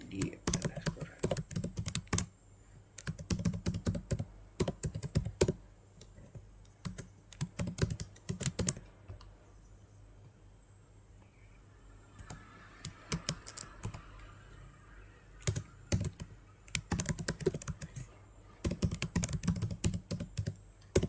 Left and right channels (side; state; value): both; identical; correlation 1.00